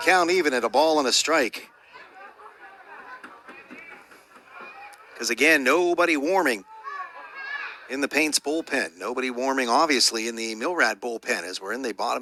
Count even at a ball and a strike. Because again, nobody warming in the Paints bullpen. Nobody warming, obviously, in the Millrat bullpen as we're in the bottom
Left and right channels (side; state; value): both; identical; correlation 1.00